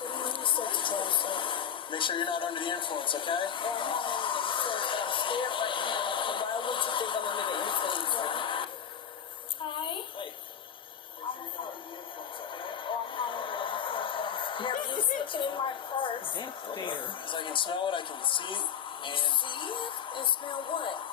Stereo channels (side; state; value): right; quieter; 8.2 dB